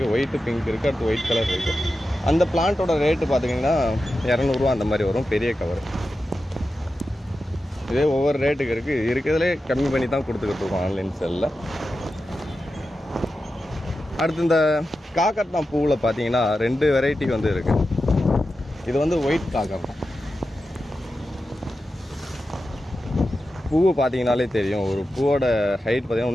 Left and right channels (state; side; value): normal; both; correlation 0.91